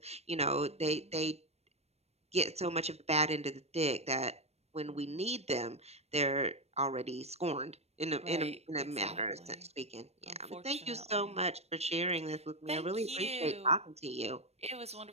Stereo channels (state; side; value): late; left; 0.31 ms